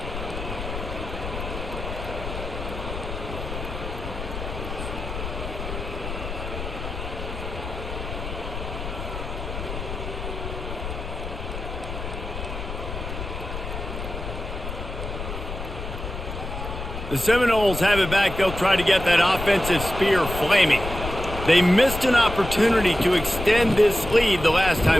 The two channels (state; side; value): noise; left; rumble, 7 dB below the sound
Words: The Seminoles have it back. They'll try to get that offensive spear flaming. They missed an opportunity to extend this lead the last